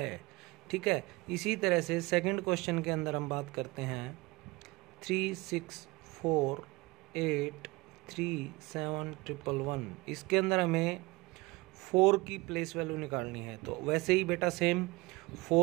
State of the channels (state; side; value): quieter; left; 22.5 dB